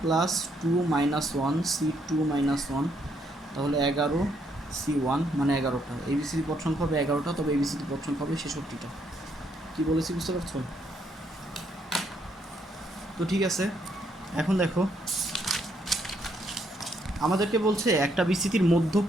plus 2 minus one C 2 minus one, তাহলে 11 সি 1, মানে 11টা। এই বিস্তৃতির পদ সংখ্যা হবে 11টা, তবে এই বিস্তৃতির পদ সংখ্যা হবে 66টা। কী বলেছি বুঝতে পারছো? তো ঠিক আছে, এখন দেখো আমাদেরকে বলছে একটা বিস্তৃতির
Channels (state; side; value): normal; both; correlation 0.73